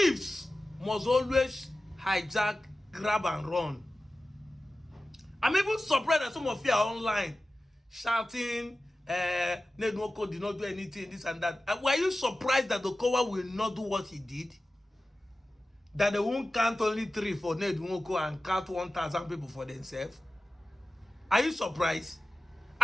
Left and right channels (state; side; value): normal; both; correlation 0.95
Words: must always hijack, grab, and run. I'm even surprised that some of you are online shouting, Nedwoko did not do anything, this and that. Were you surprised that Okowa will not do what he did? That they won't count only 3 for Nedwoko and count 1,000 people for themselves? Are you surprised?